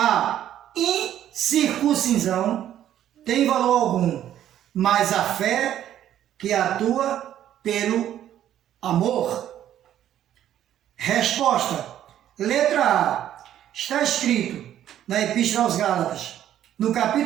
incircuncisão tem valor algum, mas a fé que atua pelo amor. Resposta. Letra A. Está escrito na Epístola aos Gálatas, no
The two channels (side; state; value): left; quieter; 11.3 dB